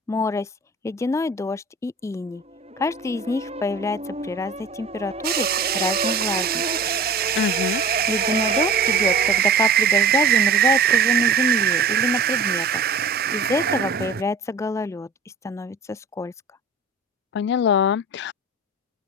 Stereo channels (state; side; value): quieter; left; 3.5 dB